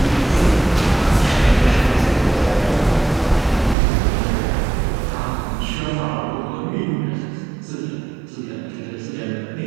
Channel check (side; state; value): left; drops out; at 3.8 s